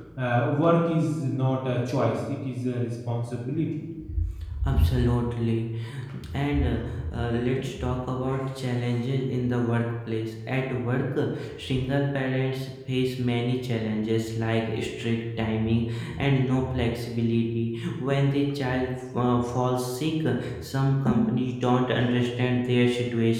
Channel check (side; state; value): both; identical; correlation 1.00